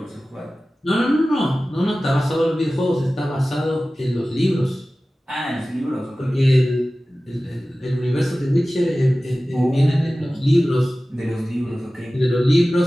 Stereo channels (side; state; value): both; normal; correlation 0.96